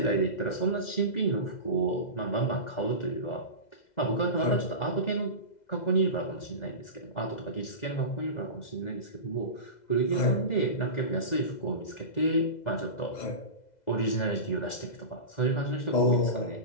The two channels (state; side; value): late; right; 2.0 ms